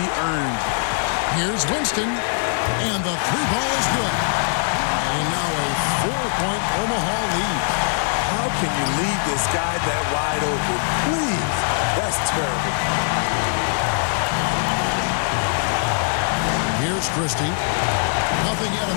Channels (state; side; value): silent; right; 64 dB below the other